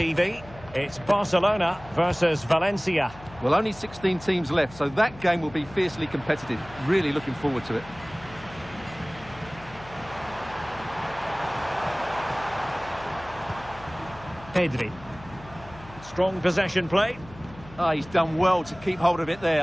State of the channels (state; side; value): noise; left; hum, 19 dB below the sound